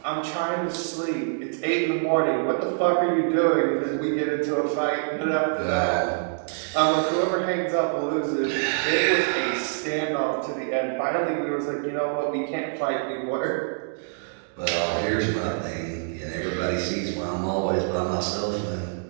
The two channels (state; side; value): silent; left; digital silence